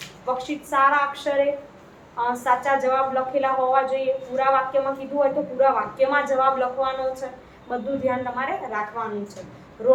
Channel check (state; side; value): identical; both; correlation 1.00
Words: વર્કશીટ સારા અક્ષરે સાચા જવાબ લખેલા હોવા જોઈએ. પૂરા વાક્યમાં કીધું હોય તો પૂરા વાક્યમાં જવાબ લખવાનો છે. બધું ધ્યાન તમારે રાખવાનું છે.